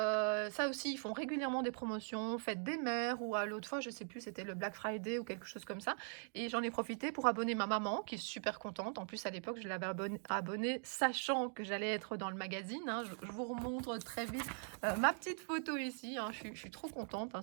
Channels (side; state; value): left; silent; 50 dB below the other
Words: aussi, ils font régulièrement des promotions, fête des mères ou à l'autre fois, je sais plus, c'était le Black Friday ou quelque chose comme ça et j'en ai profité pour abonner ma maman qui est super contente. En plus, à l'époque, je l'avais abonnée sachant que j'allais être dans le magazine, hein. Je vous remontre très vite ma petite photo ici, hein. Je suis trop contente, hein.